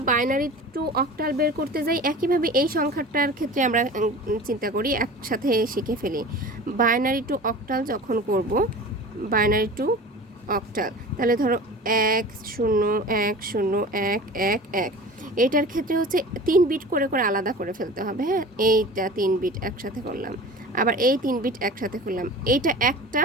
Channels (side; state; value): both; normal; correlation 0.37